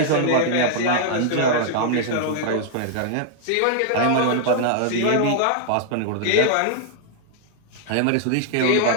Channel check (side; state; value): both; different; correlation -0.01